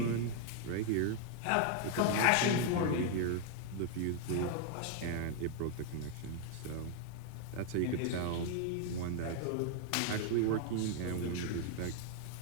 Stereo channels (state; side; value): different; both; correlation 0.00